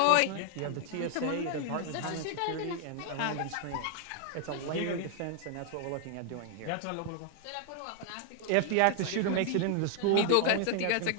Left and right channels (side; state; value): both; different; correlation 0.00